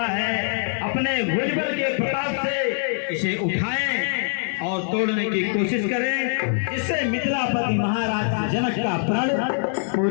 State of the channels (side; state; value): right; silent; digital silence